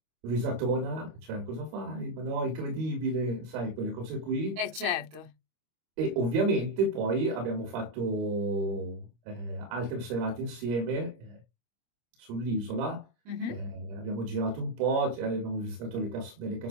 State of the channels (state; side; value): late; left; 25 ms